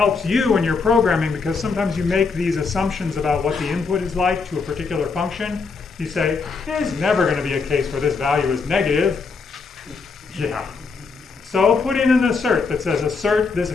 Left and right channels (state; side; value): quieter; right; 4.7 dB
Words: you in your programming because sometimes you make these assumptions about what the input is like to a particular function. You say, there's never going to be a case where this value is negative. Yeah. So put in an assert that says assert this